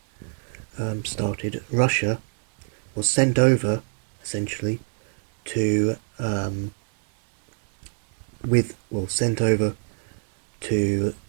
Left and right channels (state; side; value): silent; left; digital silence